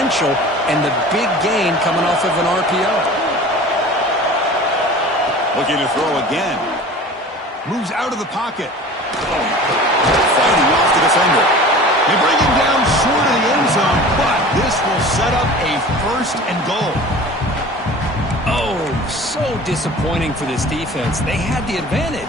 and the big gain coming off of an RPO. Looking to throw again. Moves out of the pocket. Fighting off the defender. They bring him down short of the end zone, but this will set up a 1st and goal. Oh, so disappointing for this defense. They had the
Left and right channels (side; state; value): both; normal; correlation 0.40